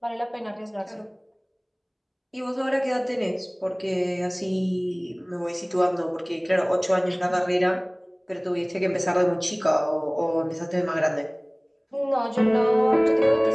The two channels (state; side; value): identical; both; correlation 1.00